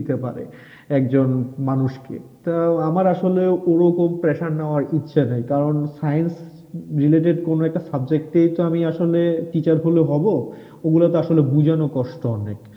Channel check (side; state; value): both; identical; correlation 1.00